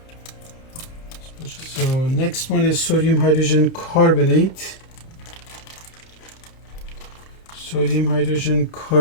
So next one is sodium hydrogen carbonate. Sodium hydrogen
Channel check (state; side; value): late; right; 30 ms